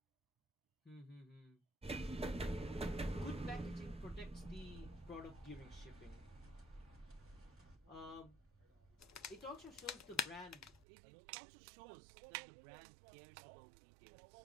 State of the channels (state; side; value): drops out; left; at 10.9 s